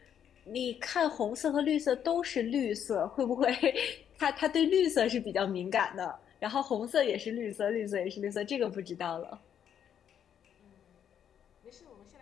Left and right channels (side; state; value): right; quieter; 9.0 dB